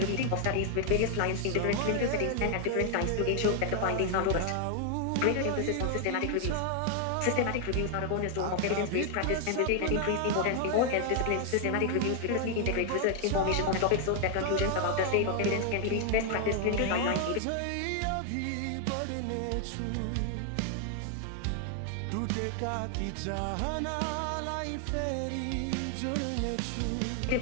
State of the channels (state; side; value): different; both; correlation 0.00